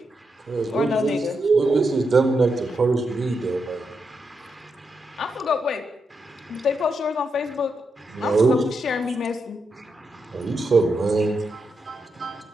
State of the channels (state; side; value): normal; both; correlation 0.84